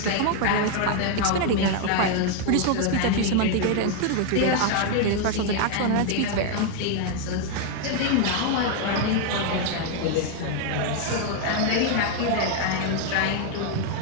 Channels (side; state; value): both; different; correlation 0.00